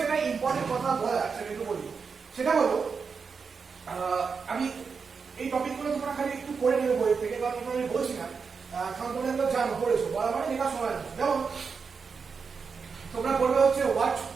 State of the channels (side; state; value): left; quieter; 5.4 dB